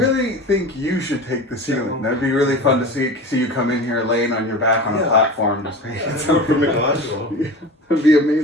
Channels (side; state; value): both; normal; correlation 0.33